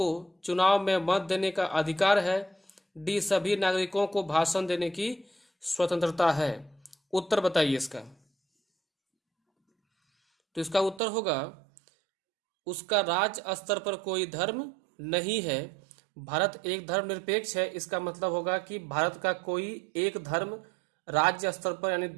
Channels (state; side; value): drops out; left; at 11.0 s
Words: चुनाव में मत देने का अधिकार है, डी सभी नागरिकों को भाषण देने की स्वतंत्रता है। उत्तर बताइए इसका। तो इसका उत्तर होगा उसका राज्य स्तर पर कोई धर्म नहीं है। भारत एक धर्मनिरपेक्ष है, इसका मतलब होगा कि भारत का कोई एक धर्म राज्य स्तर पर यानी